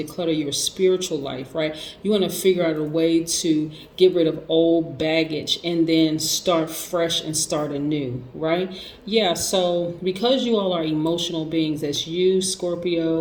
declutter your spiritual life, right? You want to figure out a way to get rid of old baggage and then start fresh and start anew, right? Yeah, so because you all are emotional beings, that's you,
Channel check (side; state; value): both; identical; correlation 1.00